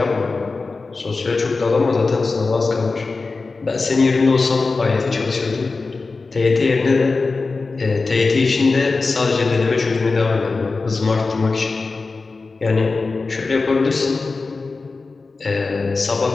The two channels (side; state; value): right; quieter; 3.9 dB